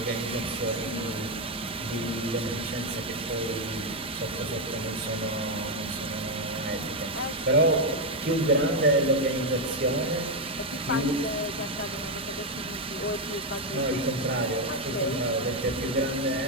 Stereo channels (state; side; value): normal; both; correlation 0.04